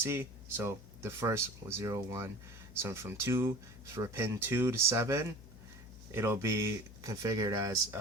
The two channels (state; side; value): noise; left; hum, 17 dB below the sound